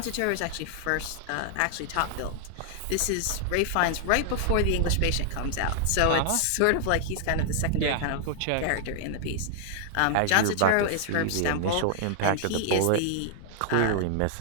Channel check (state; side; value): different; both; correlation 0.00